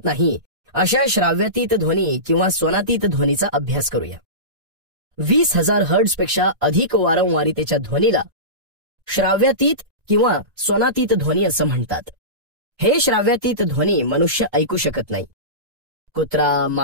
नाही अशा श्राव्यातीत ध्वनी किंवा स्वनातीत ध्वनीचा अभ्यास करूया. 20,000 हर्ट्झ पेक्षा अधिक वारंवारितेच्या ध्वनीला श्राव्यातीत किंवा स्वनातीत ध्वनी असं म्हणतात. हे श्राव्यातीत ध्वनी मनुष्य ऐकू शकत नाही. कुत्रा,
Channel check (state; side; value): late; left; 1.9 ms